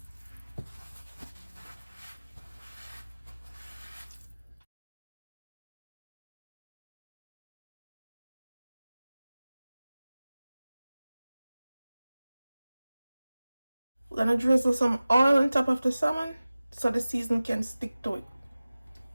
We're gonna drizzle some oil on top of the salmon so the seasoning can stick to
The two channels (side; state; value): both; inverted; correlation -0.97